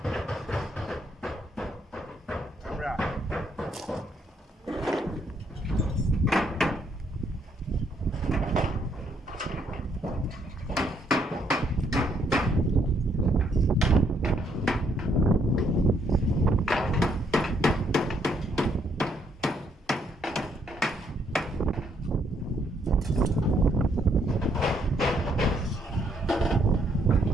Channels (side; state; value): both; normal; correlation 0.72